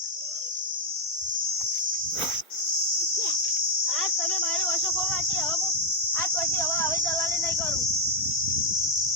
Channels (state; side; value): normal; both; correlation 0.01